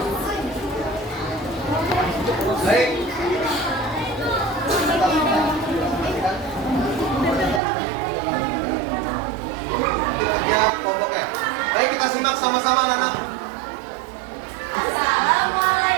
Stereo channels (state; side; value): drops out; left; at 7.6 s